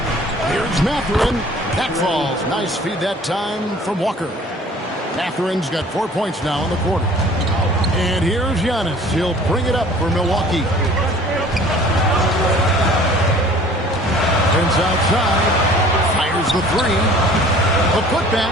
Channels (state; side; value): normal; both; correlation 0.50